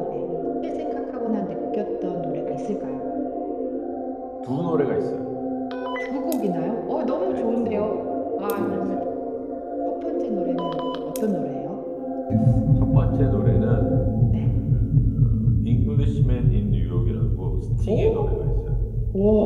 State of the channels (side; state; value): both; identical; correlation 1.00